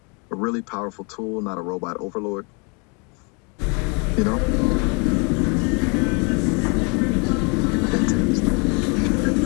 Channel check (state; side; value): quieter; right; 33.2 dB